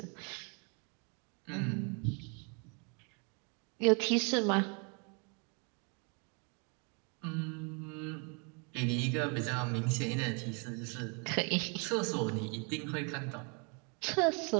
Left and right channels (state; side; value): quieter; left; 35.3 dB